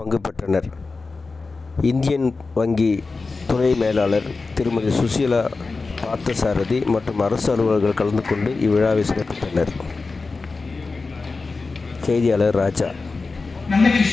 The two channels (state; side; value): quieter; right; 4.0 dB